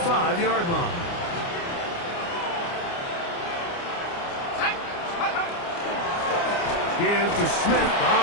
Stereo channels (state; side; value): late; right; 29 ms